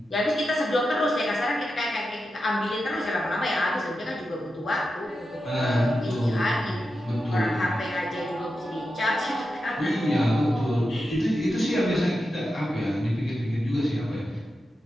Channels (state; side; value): normal; both; correlation 0.90